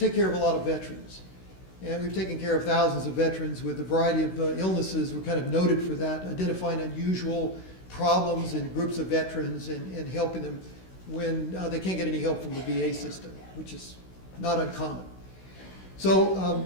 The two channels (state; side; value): late; right; 16 ms